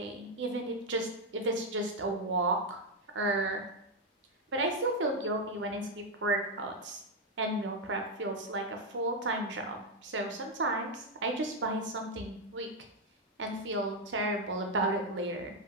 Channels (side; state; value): both; normal; correlation 0.03